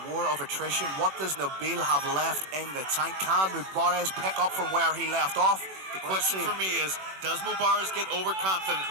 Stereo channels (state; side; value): late; left; 21 ms